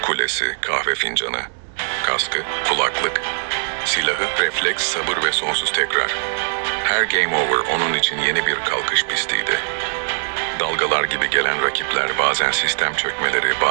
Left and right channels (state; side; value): silent; left; digital silence